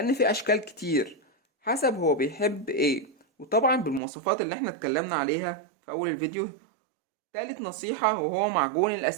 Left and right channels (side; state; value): left; drops out; at 4.0 s